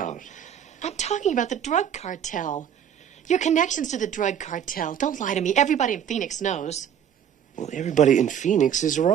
I'm talking about the drug cartel. Your connections to the drug cartel. Don't lie to me. Everybody in Phoenix knows. Well, everybody in Phoenix is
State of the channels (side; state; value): left; quieter; 9.0 dB